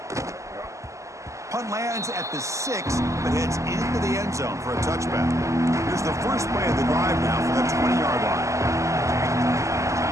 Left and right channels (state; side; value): late; left; 0.15 ms